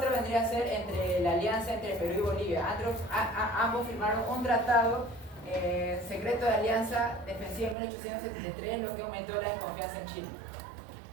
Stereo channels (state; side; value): drops out; left; at 7.8 s